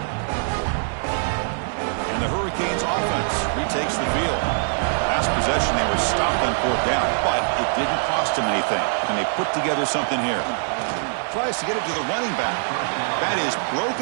And the Hurricanes offense retakes the field. Last possession, they were stopped on 4th down, but it didn't cost them anything. And they put together something here. Tries to get it to the running back. That is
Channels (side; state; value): left; silent; digital silence